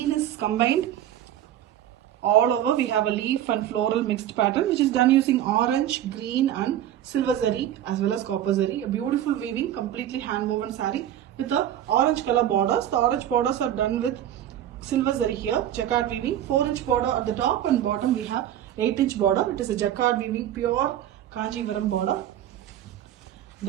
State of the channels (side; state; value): left; quieter; 11.6 dB